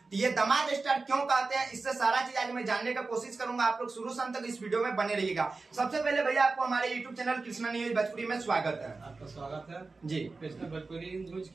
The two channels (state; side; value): quieter; left; 3.9 dB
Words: ये दामाद स्टार क्यों कहते हैं, इससे सारा चीज आज मैं जानने का कोशिश करूंगा। आप लोग शुरू से अंत तक इस वीडियो में बने रहिएगा। सबसे पहले भैया आपको हमारे YouTube channel Krishna news Bhojpuri में स्वागत है। आपका स्वागत है जी। कृष्णा भोजपुरी न्यूज